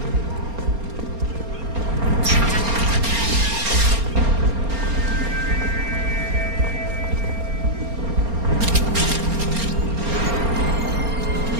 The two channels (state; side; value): late; left; 4.3 ms